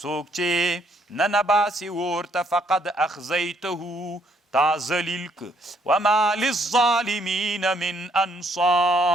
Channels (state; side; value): normal; both; correlation 0.69